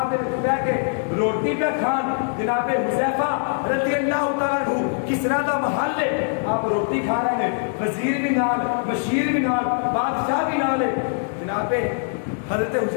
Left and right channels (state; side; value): silent; right; 64 dB below the other